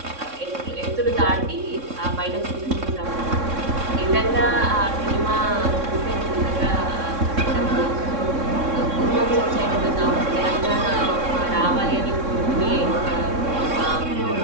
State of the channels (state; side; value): late; left; 3.6 ms